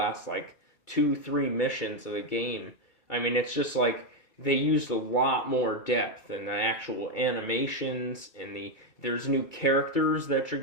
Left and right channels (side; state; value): right; late; 2.3 ms